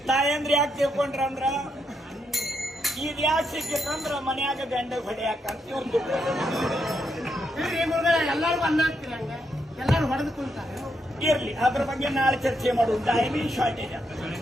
ತಾಯಂದ್ರಿ ಯಾಕೆ ತಿಳ್ಕೊಂಡ್ರಂದ್ರ, ಇದ್ ಯಾಕೆ ಸಿಕ್ಕಿತ್ತಂದ್ರ ಮನ್ಯಾಗ ಗಂಡ ಹೊಡೆಯಾಕಂತ ಒಂದು ಎಲ್ಲರೂ ಹೊಡೆದು ಕುಂತಾರೆ. ಇರ್ಲಿ, ಅದ್ರ ಬಗ್ಗೆ ನಾಳೆ ಚರ್ಚೆ ಮಾಡುದು. Timing shortage.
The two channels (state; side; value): normal; both; correlation 0.80